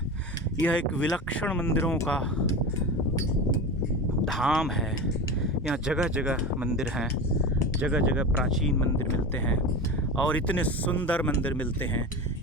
यह एक विलक्षण मंदिरों का धाम है। यहाँ जगह जगह मंदिर हैं, जगह जगह प्राचीन मंदिर मिलते हैं और इतने सुंदर मंदिर मिलते हैं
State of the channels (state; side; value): normal; both; correlation 0.27